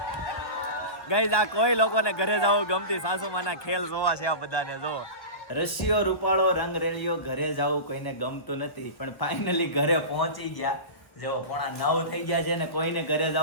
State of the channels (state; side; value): late; right; 1.3 ms